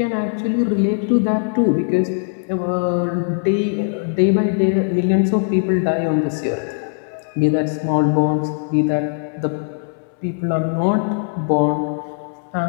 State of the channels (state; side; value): silent; right; digital silence